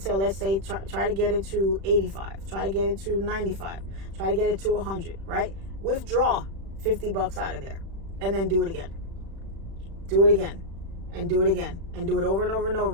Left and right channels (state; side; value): late; left; 36 ms